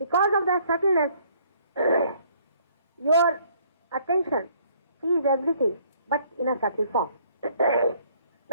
of that subtleness, your attention sees everything, but in a subtle form.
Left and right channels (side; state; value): both; inverted; correlation -0.62